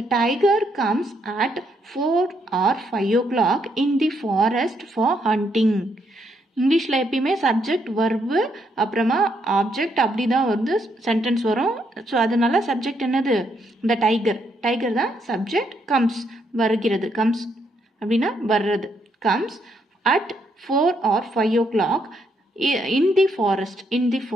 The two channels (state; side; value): normal; both; correlation 0.75